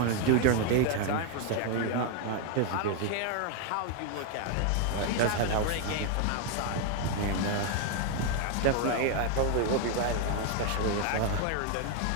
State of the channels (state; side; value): different; both; correlation 0.00